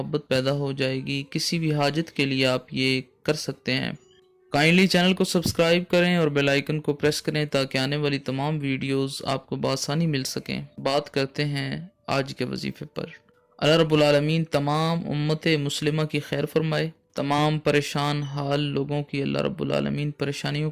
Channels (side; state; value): both; identical; correlation 1.00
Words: پیدا ہو جائے گی، کسی بھی حاجت کے لیے آپ یہ کر سکتے ہیں۔ کائنڈلی چینل کو سبسکرائب کریں اور بیل آئیکن کو پریس کریں تاکہ آنے والی تمام ویڈیوز آپ کو بآسانی مل سکیں۔ بات کرتے ہیں آج کے وظیفے پر۔ اللہ رب العالمین تمام امت مسلمہ کی خیر فرمائے، تمام پریشان حال لوگوں کی اللہ رب العالمین پریشانیوں